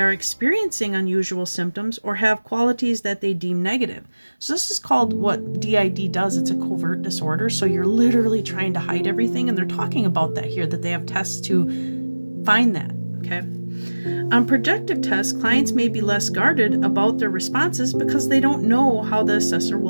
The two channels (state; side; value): inverted; both; correlation -1.00